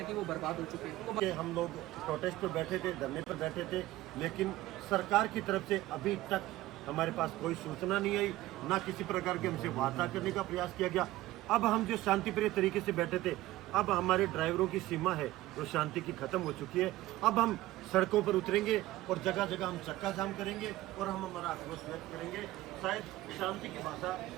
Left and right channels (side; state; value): left; quieter; 16.6 dB